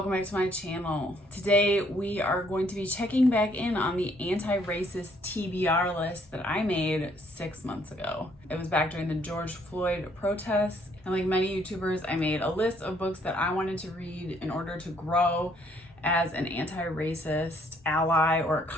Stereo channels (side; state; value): both; normal; correlation 0.66